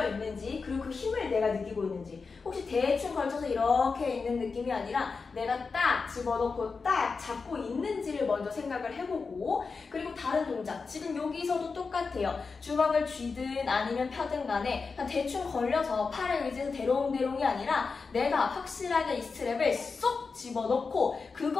있는지 그리고 그 힘을 내가 느끼고 있는지 혹시 대충 걸쳐서 이렇게 있는 느낌이 아니라 내가 딱 집어넣고 딱 잡고 있는지를 먼저 생각을 해보고 그리고 다른 동작 지금 여기서도 똑같아요. 주먹을 쥐든 아니면 펴든 간에 그냥 대충 걸려서 팔에 의지해서 대롱대롱이 아니라 내가 확실하게 이 스트랩을 쏙 집어넣고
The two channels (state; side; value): quieter; right; 4.7 dB